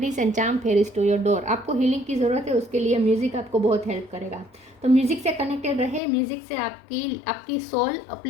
and charm fairies to your door. आपको healing की ज़रूरत है, उसके लिए music आपको बहुत help करेगा। तो म्यूज़िक से कनेक्टेड रहे, म्यूज़िक से आपकी सोल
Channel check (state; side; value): drops out; right; at 6.0 s